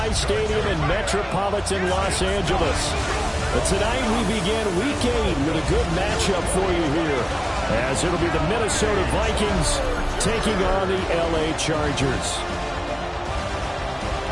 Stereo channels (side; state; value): both; identical; correlation 1.00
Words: Stadium in metropolitan Los Angeles. But tonight we begin Week 8 with a good matchup for you here, as it'll be the Minnesota Vikings taking on the LA Chargers.